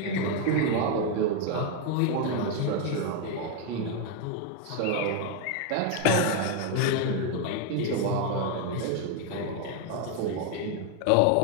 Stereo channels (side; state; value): both; different; correlation 0.01